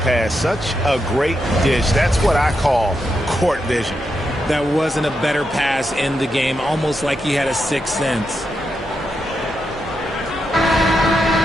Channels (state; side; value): normal; both; correlation 0.84